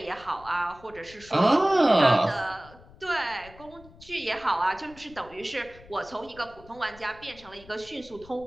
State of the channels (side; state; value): left; noise; rumble, 22 dB below the sound